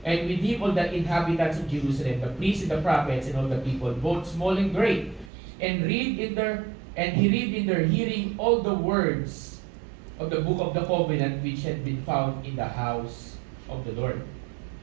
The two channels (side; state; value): left; drops out; at 5.3 s